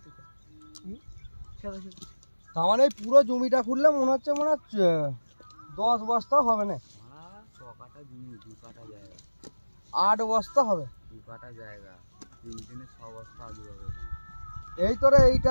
তার মানে পুরো জমিটা খুললে মনে হচ্ছে 10 বস্তা হবে না। 6 কাঠা জমি, 2 কাঠা জায়গা, 8 বস্তা হবে, 2 কাঠা জায়গা, 3 দিনে 6 বস্তা আলু হবে। এই তোরে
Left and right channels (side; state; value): both; inverted; correlation -1.00